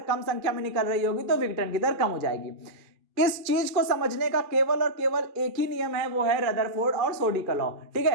कम संख्या में निकल रही होगी तो विघटन की दर कम हो जाएगी। इस चीज को समझने का केवल और केवल एक ही नियम है, वो है रदरफोर्ड और सोडी का लॉ, ठीक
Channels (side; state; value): left; late; 2.3 ms